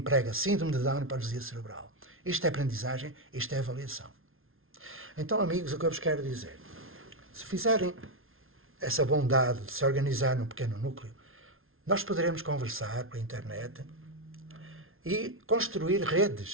síndrome de Down e paralisia cerebral. Isto é aprendizagem, isto é avaliação. Então, amigos, o que eu vos quero dizer, se fizerem essa bondade de se organizar num pequeno núcleo, nós poderemos conversar pela internet e construir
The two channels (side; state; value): left; late; 0.61 ms